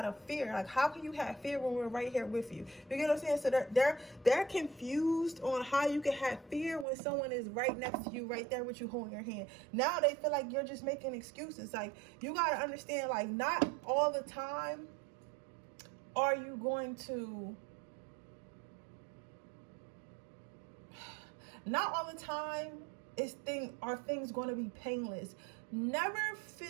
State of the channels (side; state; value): left; drops out; at 6.9 s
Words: of fear. Like, how can you have fear when we're right here with you? You get what I'm saying? So they're confused on how you can have fear when someone is right next to you, right there with you, holding your hand. Now they feel like you're just making excuses. Like, you got to understand, like, not all the time are you going to Not all the time are things going to be painless. Never